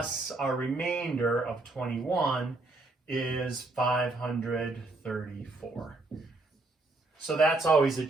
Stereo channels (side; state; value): left; quieter; 3.1 dB